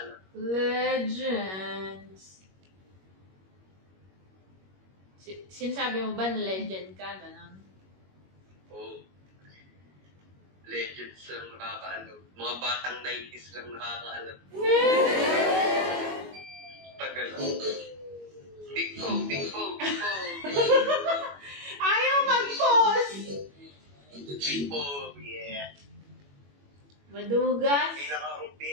Legends. Sinasabi mo ba na legend ka? Ganon? Oo. Legends lang nakakaalam. Mga batang 90s lang nakakaalam. Tagal. Big Bo. Ayaw mag-pause! Big Bo, yeah. Madugas.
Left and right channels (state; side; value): late; left; 21 ms